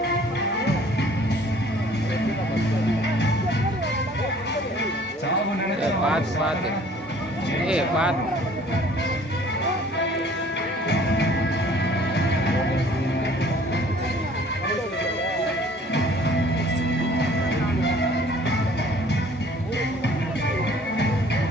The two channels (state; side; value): normal; both; correlation 0.54